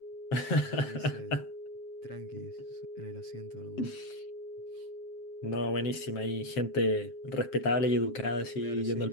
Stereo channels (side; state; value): right; late; 7.5 ms